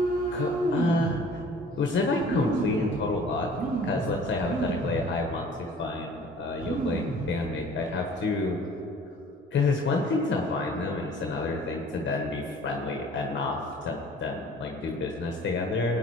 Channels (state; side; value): normal; both; correlation 0.49